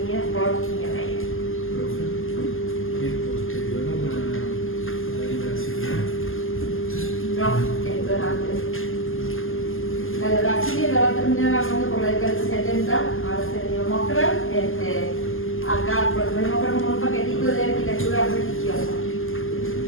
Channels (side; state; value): right; late; 0.59 ms